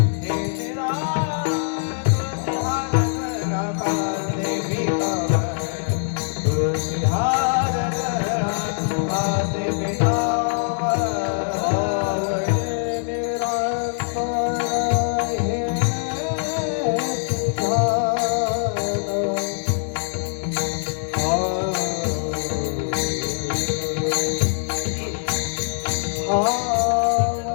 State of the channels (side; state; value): right; silent; digital silence